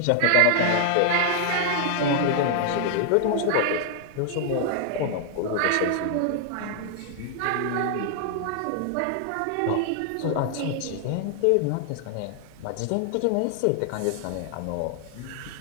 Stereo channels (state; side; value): different; both; correlation 0.00